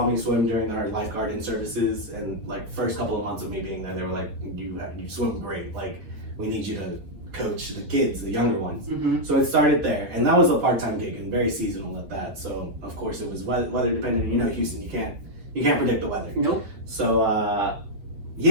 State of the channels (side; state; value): left; late; 9.1 ms